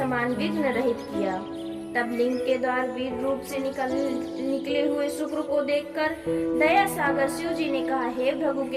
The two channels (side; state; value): both; identical; correlation 1.00